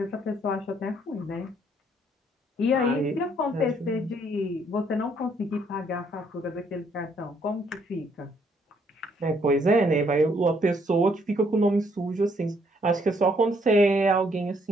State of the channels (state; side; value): normal; both; correlation 0.69